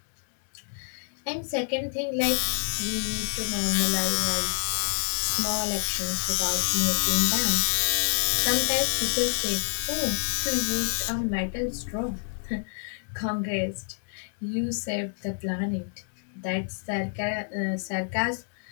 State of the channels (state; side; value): silent; right; digital silence